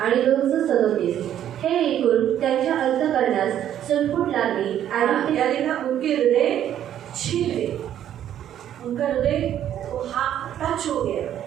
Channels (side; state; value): left; quieter; 10.8 dB